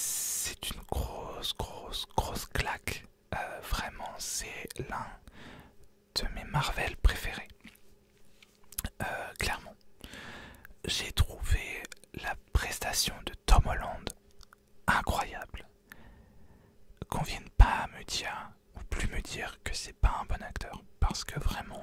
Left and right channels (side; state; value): both; identical; correlation 1.00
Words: une grosse claque. Vraiment, c'est l'un de mes Marvel préférés. Clairement. J'ai trouvé la prestation de Tom Holland incroyable. Qu'on vienne pas me dire, ou plus me dire que c'est pas un bon acteur. Parce que